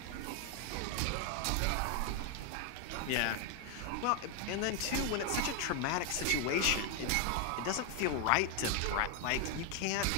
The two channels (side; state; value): both; different; correlation 0.01